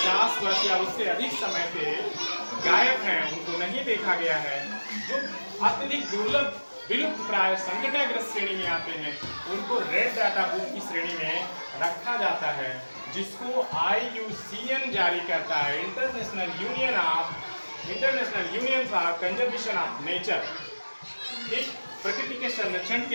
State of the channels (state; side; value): inverted; both; correlation -1.00